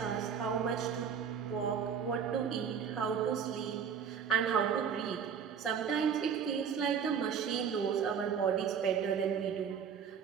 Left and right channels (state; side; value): quieter; left; 7.2 dB